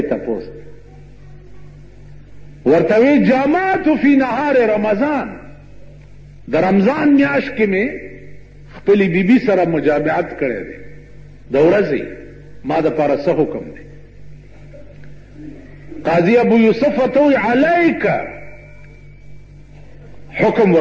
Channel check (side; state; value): both; identical; correlation 1.00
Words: تپوس. ورته وی جامعت فی نهار رمضان، د رمضان میاشت کې مې خپلې بیبي سره مجامعت کړی دی د ورځې، ما دپاره څه حکم دی؟ قاضی ابو یوسف ورته وی علیک، حکم